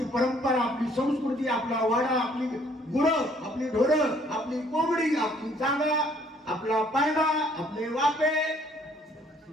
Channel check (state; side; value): normal; both; correlation 0.62